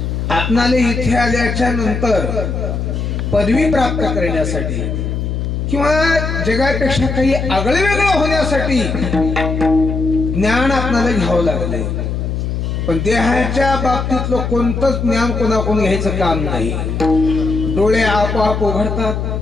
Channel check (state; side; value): noise; left; hum, 2 dB below the sound